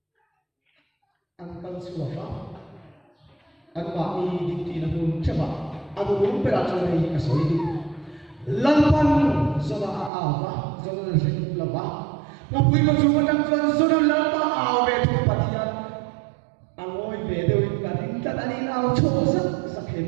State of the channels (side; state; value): left; drops out; at 10.1 s